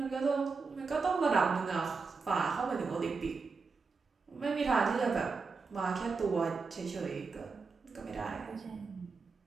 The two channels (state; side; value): quieter; left; 4.6 dB